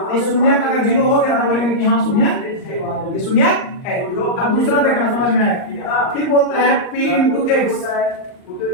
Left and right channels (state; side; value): late; right; 39 ms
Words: इस शून्यक अगर 0 हो गया तो बोलेंगे कि हाँ शून्यक, ये शून्यक है। अब दूसरा देखना समझ में आएगा, फिर बोलता है p इंटू x